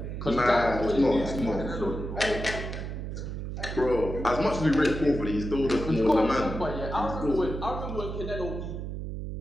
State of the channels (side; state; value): right; noise; hum, 6 dB below the sound